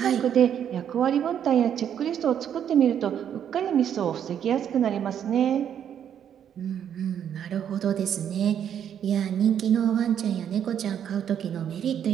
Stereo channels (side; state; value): left; quieter; 9.1 dB